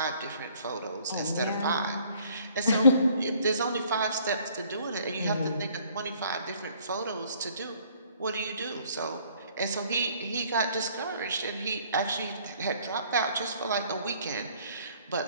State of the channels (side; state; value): both; inverted; correlation -0.60